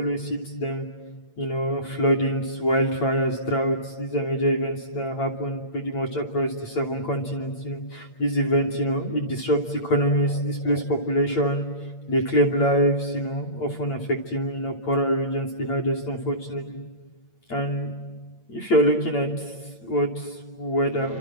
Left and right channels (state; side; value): late; right; 8.8 ms